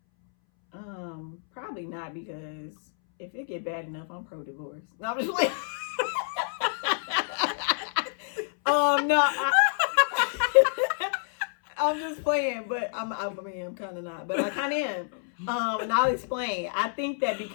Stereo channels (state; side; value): silent; right; 59 dB below the other